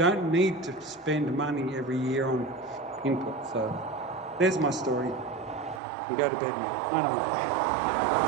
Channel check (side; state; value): left; drops out; at 5.8 s